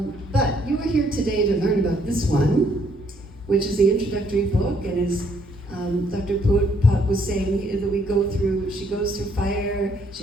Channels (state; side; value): normal; both; correlation 0.68